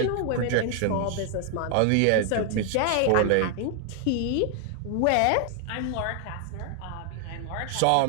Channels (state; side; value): different; both; correlation 0.00